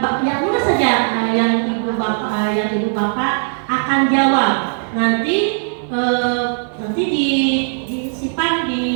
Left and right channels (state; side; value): silent; left; 67 dB below the other